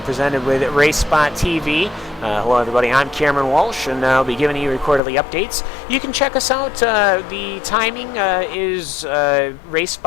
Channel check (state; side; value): drops out; right; at 5.0 s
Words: presented with Race Spot TV. Hello everybody, I'm Cameron Walsh, and I'll be giving you quarterly updates. You can check us out. The timing is